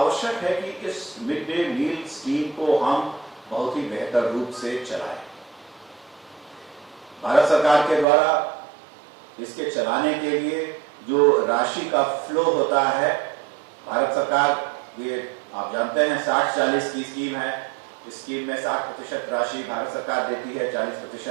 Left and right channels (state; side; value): drops out; left; at 8.1 s